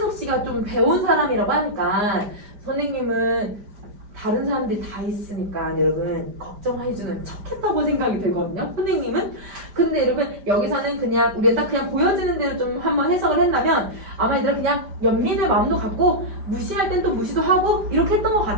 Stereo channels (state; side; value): late; left; 5.0 ms